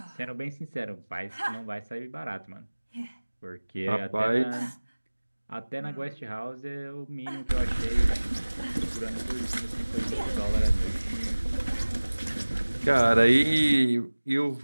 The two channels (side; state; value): both; inverted; correlation -1.00